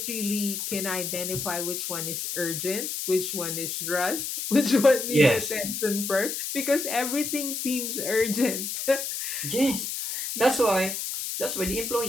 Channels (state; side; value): noise; left; hiss, 4 dB below the sound